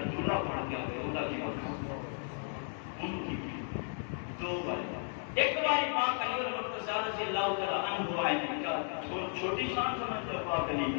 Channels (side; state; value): right; silent; 55 dB below the other